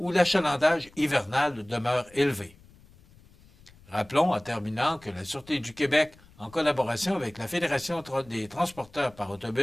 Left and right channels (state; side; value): noise; left; rumble, 26 dB below the sound